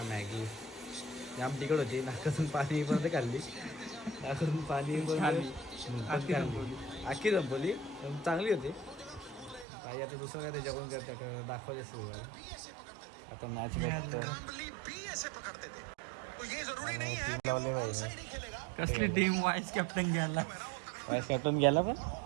मॅगी. जाम तिकड होती. नाकातून पाणी पण खाल्ली. नाकातून पाणी पण आखी संपवली. चांगली होती. ताई आता दुसरं काय ते जेवण करते दाखवायचे सुरू आहे. आता मॅच कसली टीम वाईस कॅप्टन घ्यायला. वाईस कॅप्टन गेला पण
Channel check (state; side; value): drops out; left; at 9.7 s